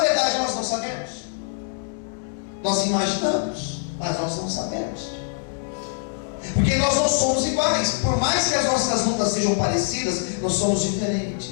nós não sabemos. Nós imaginamos, mas nós não sabemos. Porque nós não somos iguais. Por mais que as nossas lutas sejam parecidas, nós somos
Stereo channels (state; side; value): silent; right; digital silence